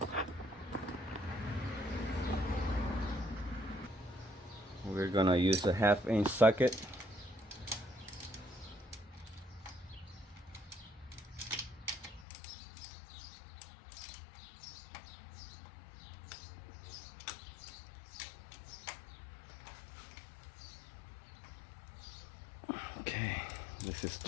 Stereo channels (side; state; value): right; drops out; at 12.2 s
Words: we're gonna use a 1/2-inch socket. Okay, this is